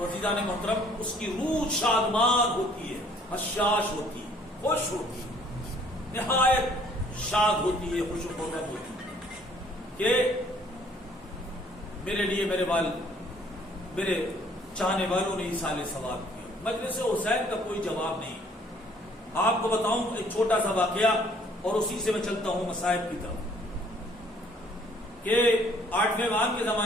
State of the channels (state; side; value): normal; both; correlation 0.60